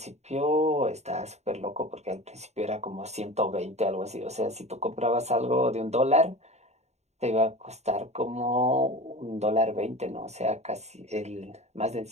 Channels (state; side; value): late; left; 0.32 ms